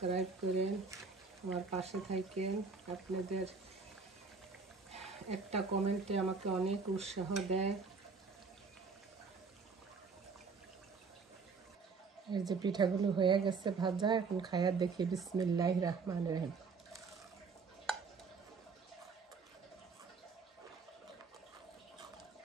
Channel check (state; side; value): quieter; left; 4.8 dB